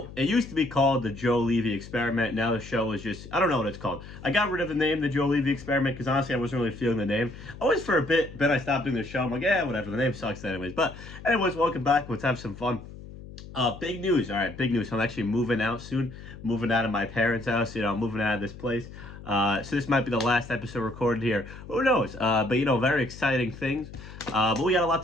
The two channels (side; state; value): left; noise; hum, 15 dB below the sound